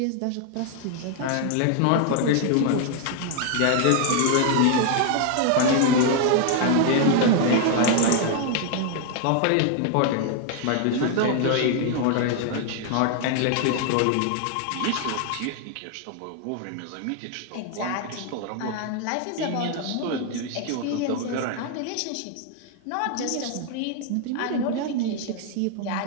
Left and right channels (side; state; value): both; different; correlation 0.00